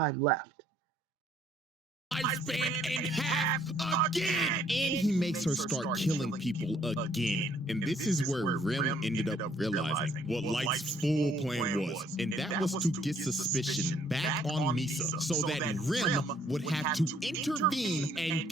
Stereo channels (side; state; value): both; normal; correlation 0.64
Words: left. Lifespan in half again. And he makes her start killing people again. And this is where Rim ended up realizing what Light's full plan was. And that was to get suspicion back on Misa so that Rim would have to intervene and